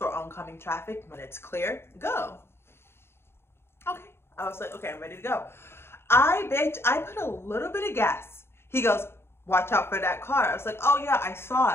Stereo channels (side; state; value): right; late; 0.12 ms